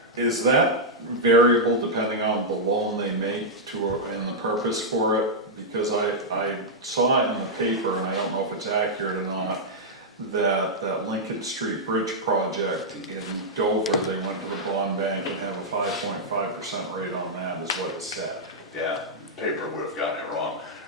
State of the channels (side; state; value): both; normal; correlation -0.06